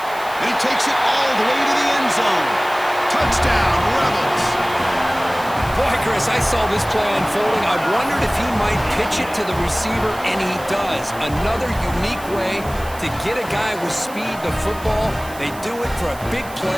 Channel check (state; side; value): noise; right; hiss, 18 dB below the sound